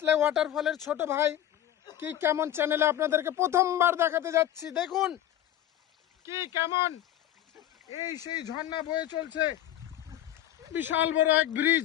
ওয়াটারফলের ছোট ভাই কি কেমন চ্যানেলে আপনাদেরকে প্রথমবার দেখাতে যাচ্ছি। দেখুন কি কেমন এই সেই ঝর্ণা বয়ে চলছে। বিশাল বড় এক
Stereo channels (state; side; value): quieter; right; 12.1 dB